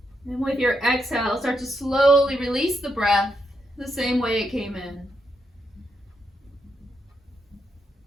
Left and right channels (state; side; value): normal; both; correlation 0.81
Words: And with your exhale, start to slowly release the breath the same way it came in.